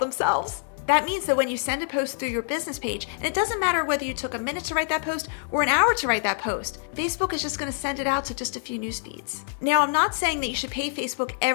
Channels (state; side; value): silent; right; digital silence